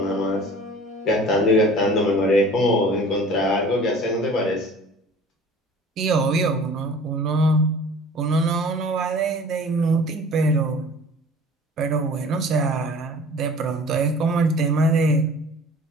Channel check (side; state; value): both; normal; correlation 0.45